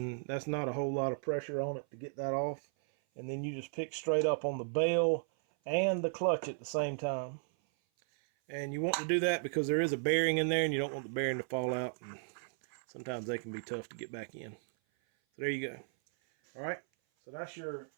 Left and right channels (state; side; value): silent; left; 54 dB below the other